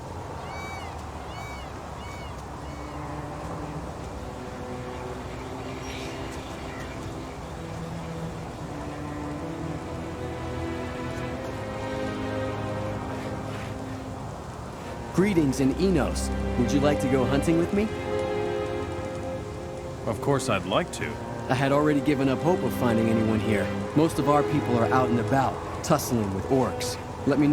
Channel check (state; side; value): identical; both; correlation 1.00